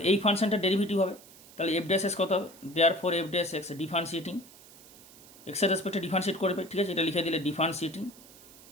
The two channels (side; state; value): right; noise; hiss, 22 dB below the sound